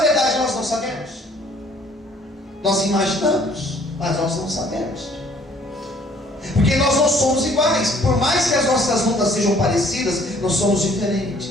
nós não sabemos. Nós imaginamos, mas nós não sabemos. Porque nós não somos iguais. Por mais que as nossas lutas sejam parecidas, nós somos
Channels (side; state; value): both; normal; correlation 0.58